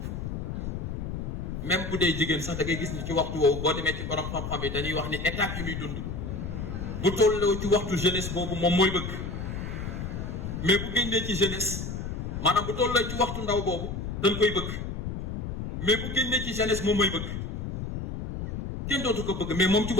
même bu dee jigéen sax da ngay gis ni ci waxtu woowu boo demee ci borom xam-xam yi dañuy wax ni étape yi muy dund bu tolloo ci waxtu jeunesse boobu moom mooy bëgg mais bu génnee ci jeunesse maanaam bu tolloo ci waxtu ndaw boobu dañ koy bëgg mais bu génnee ci jeunesse moom mooy bëgg kenn dootu ko bëgg mais moom ci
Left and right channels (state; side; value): noise; left; rumble, 5 dB below the sound